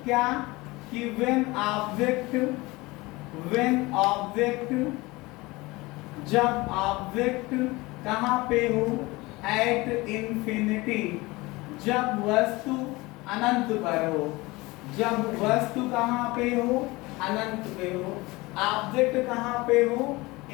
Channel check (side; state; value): right; quieter; 22.1 dB